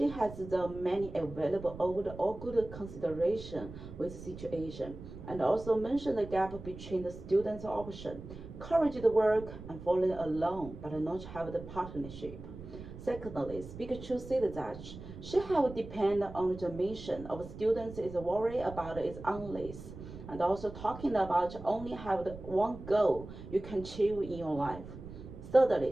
has the many available over the all good consideration with situation, and also mentioned the gap between the students' option, courage the work and falling alone, but not have the partnership. Secondly, Speaker Chu said that she have depend on the mission of students is worry about is unless, and also talking about only have the one goal you can achieve in your life.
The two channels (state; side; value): noise; right; rumble, 13 dB below the sound